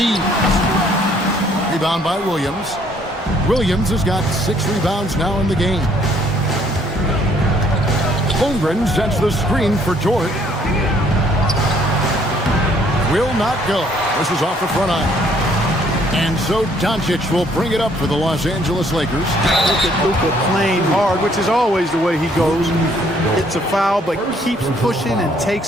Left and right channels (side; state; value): both; normal; correlation 0.64